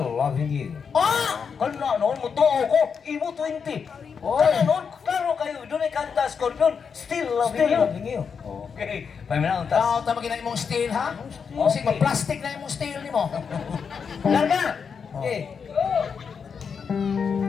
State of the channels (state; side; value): quieter; right; 6.2 dB